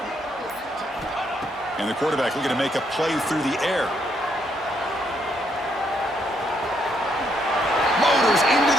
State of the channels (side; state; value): both; normal; correlation 0.74